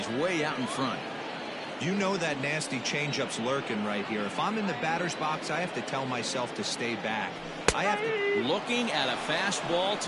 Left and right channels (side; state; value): both; identical; correlation 1.00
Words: way out in front. You know that nasty changeup's lurking right here. If I'm in the batter's box, I have to tell myself to stay back. I have to. Looking at a fastball